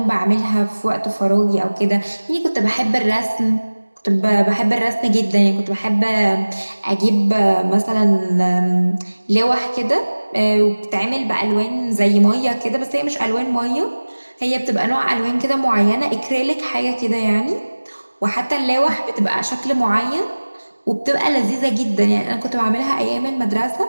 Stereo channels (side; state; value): both; inverted; correlation -1.00